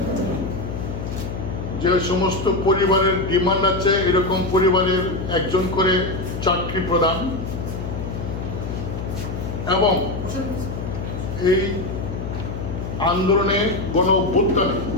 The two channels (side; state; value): left; noise; hum, 5 dB below the sound